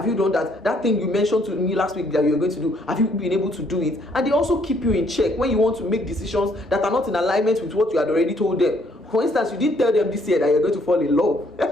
you done that? That thing you mentioned to me last week that you were going to do, have you been able to do it? And they also keep you in check when you want to make decisions that are not in alignment with what you had already told them. For instance, you didn't tell them this year that you're going to fall in love.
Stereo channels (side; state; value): both; normal; correlation 0.67